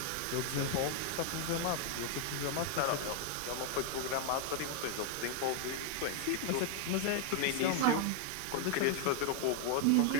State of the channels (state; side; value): different; both; correlation 0.00